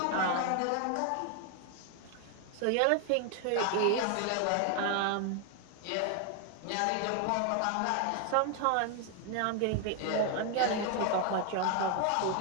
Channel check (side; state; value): both; different; correlation 0.00